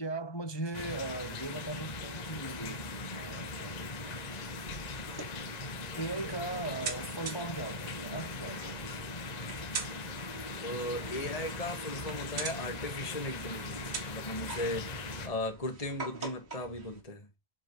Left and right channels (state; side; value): late; right; 1.9 ms